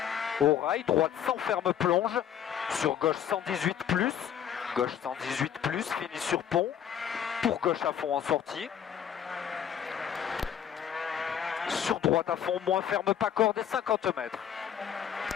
au rail, droite sans ferme plonge, sur gauche 118 plus, gauche 118 plus, fini sur pont, pour gauche à fond en sortie, sur droite à fond, moins ferme, pas corde et 50 mètres.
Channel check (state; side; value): quieter; right; 9.1 dB